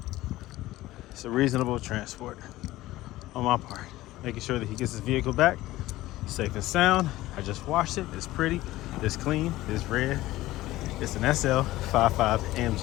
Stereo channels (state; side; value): quieter; right; 16.8 dB